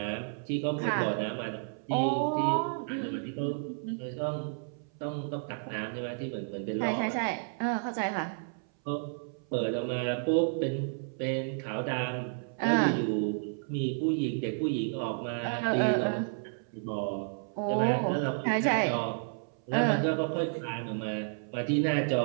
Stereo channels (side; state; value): left; silent; 57 dB below the other